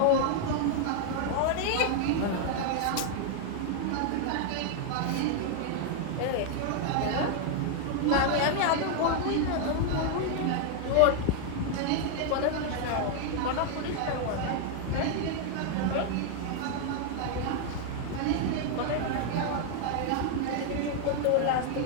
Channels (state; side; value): different; both; correlation 0.00